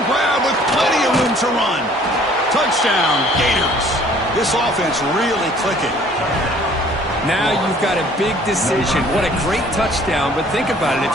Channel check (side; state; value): both; normal; correlation 0.55